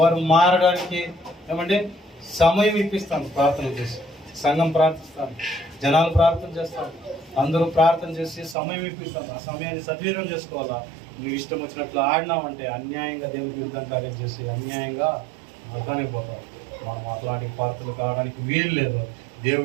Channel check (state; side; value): drops out; left; at 8.6 s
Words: మారడానికి ఏమంటే సమయం ఇప్పిస్తాను. ప్రార్థన చేసి సంఘం ప్రార్థిస్తాను, జనాలు ప్రార్థన చేస్తాను, అందరూ ప్రార్థన చేసి సమయం ఇప్పిస్తాను. ఆ సమయాన్ని సద్వినియోగం చేసుకోవాలా. నువ్వు ఇష్టం వచ్చినట్లు ఆడినావంటే అన్యాయంగా దేవుడికి విరుద్ధం కార్యం చేసి అన్యాయంగా నరకానికి పోతావు. మనం అట్లాంటి పాత్రలు కావడానికి వీలు లేదు.